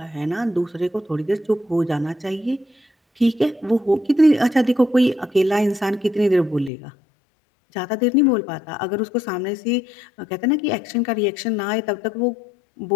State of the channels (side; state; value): right; drops out; at 6.7 s